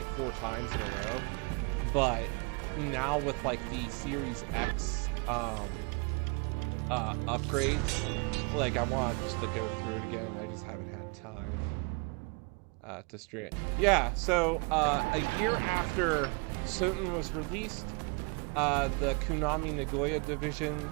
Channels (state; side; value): quieter; left; 32.7 dB